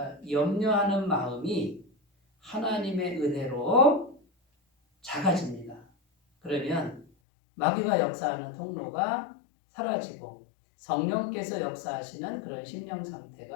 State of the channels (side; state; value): right; drops out; at 7.1 s